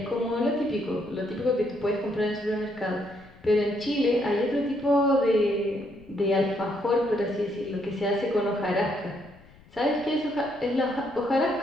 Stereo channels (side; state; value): left; noise; rumble, 24 dB below the sound